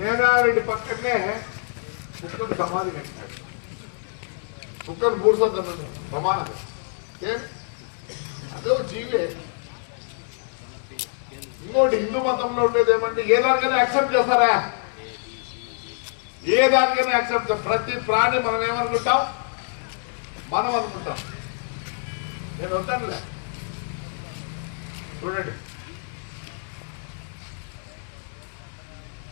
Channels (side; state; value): right; silent; 61 dB below the other